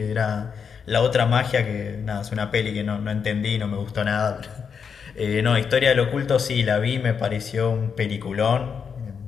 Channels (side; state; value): right; quieter; 6.5 dB